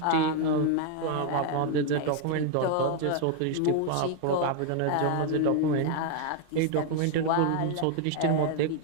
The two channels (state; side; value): different; both; correlation 0.00